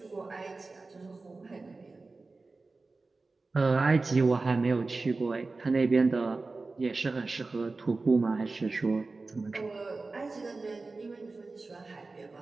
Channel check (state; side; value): quieter; left; 3.6 dB